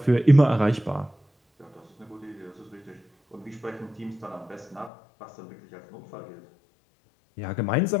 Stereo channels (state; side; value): drops out; right; at 4.9 s